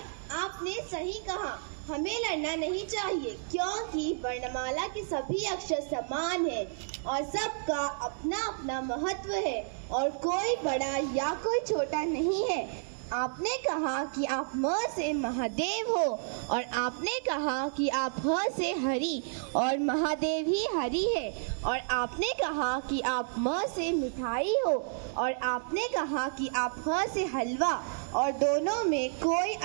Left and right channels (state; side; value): silent; left; digital silence